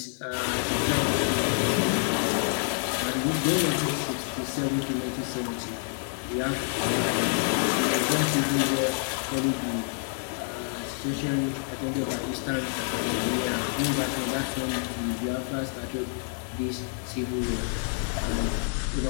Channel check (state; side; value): silent; right; 55 dB below the other